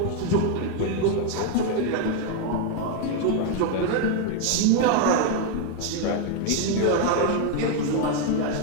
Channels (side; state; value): both; different; correlation 0.01